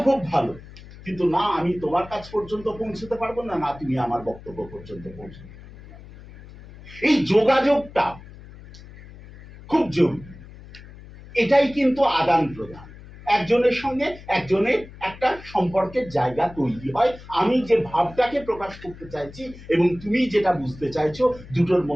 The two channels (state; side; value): noise; left; hum, 18 dB below the sound